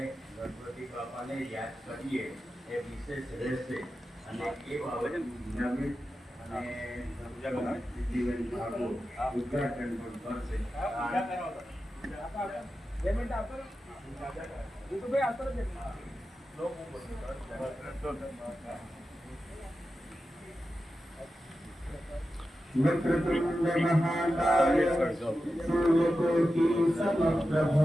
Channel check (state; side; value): normal; both; correlation 0.92